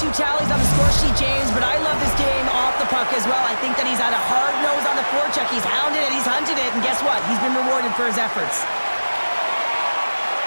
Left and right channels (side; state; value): both; inverted; correlation -1.00